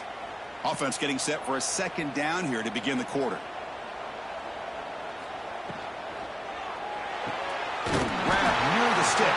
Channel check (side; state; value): both; identical; correlation 1.00